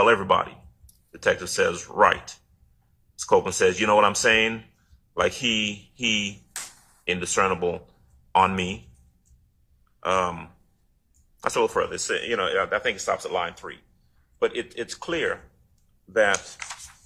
everybody. Detective says, right. Mr. Copeland says, you know what I'm saying? Like he indiscernible on me. That's a little further. It's, I think it stops at line 3. But it's clear that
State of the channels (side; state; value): both; identical; correlation 1.00